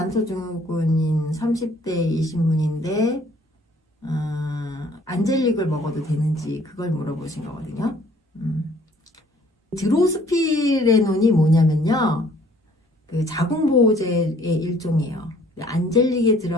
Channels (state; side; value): normal; both; correlation 0.58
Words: 30대이신 분인데 안젤릭을 먹어도 되는지 그걸 물어보신 거거든요. 드로스피레논이 뭐냐면요, 그 자궁보호제의 일종이에요. 안젤릭에